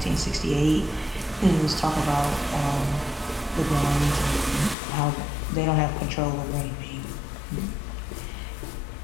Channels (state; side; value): drops out; right; at 4.8 s